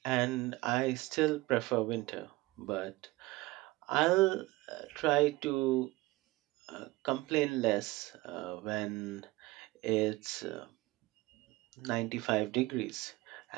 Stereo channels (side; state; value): left; quieter; 20.2 dB